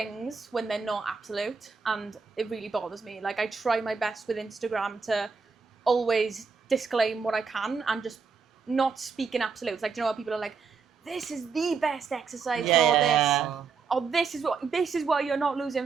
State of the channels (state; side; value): quieter; left; 5.3 dB